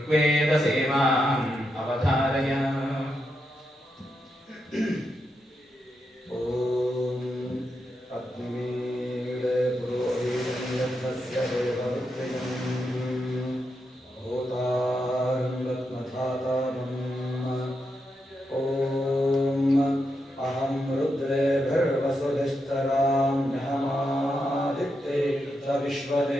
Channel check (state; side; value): normal; both; correlation 0.84